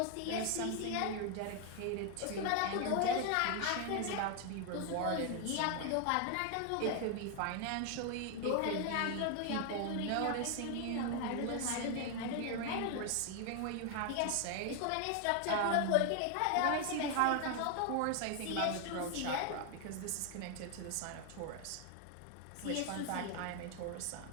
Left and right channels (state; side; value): different; both; correlation 0.01